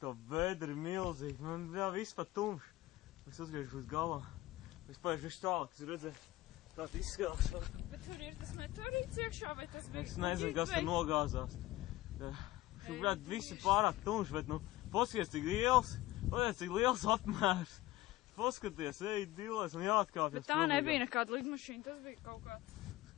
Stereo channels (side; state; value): right; quieter; 17.0 dB